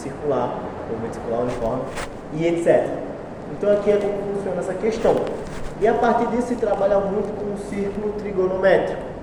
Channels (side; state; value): both; identical; correlation 1.00